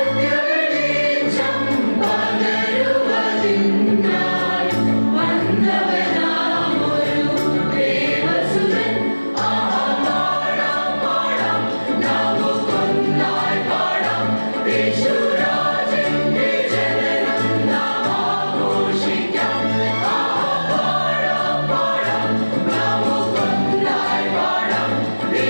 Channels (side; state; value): both; inverted; correlation -1.00